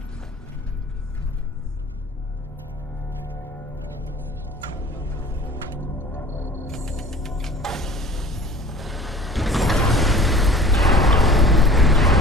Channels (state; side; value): normal; both; correlation 0.46